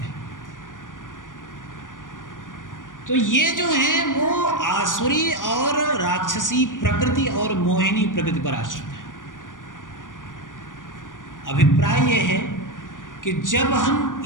तो ये जो हैं वो आसुरी और राक्षसी प्रकृति और मोहिनी प्रकृति पर आश्रित है। अभिप्राय ये है कि जब हम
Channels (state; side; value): late; right; 0.88 ms